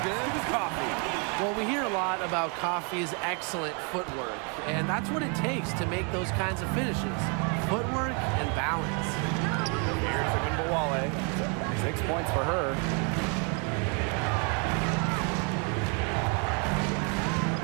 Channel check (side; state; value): left; quieter; 36.2 dB